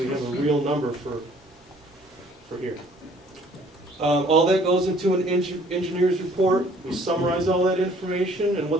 have a real number for here. All that goes into an engineer's report. We summarize all that information, and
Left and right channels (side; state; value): both; normal; correlation 0.57